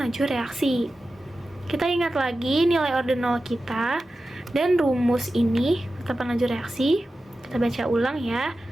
laju reaksi. Kita ingat lagi nilai order 0 kita dan rumus ini, tetapan laju reaksi. Kita baca ulang ya.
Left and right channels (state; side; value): normal; both; correlation 0.93